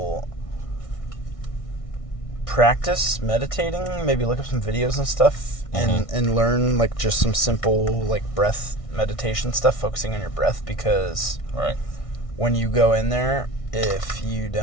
practice meditating, maybe look up some videos and stuff, mm-hmm. and learn like just some simple like breath meditation stuff, focusing on your breath, because right. when you go in there, if you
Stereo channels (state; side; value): late; right; 1.6 ms